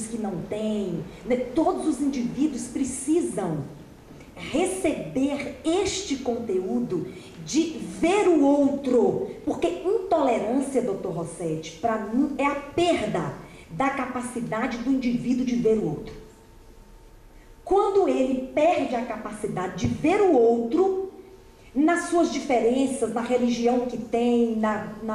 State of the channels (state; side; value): identical; both; correlation 1.00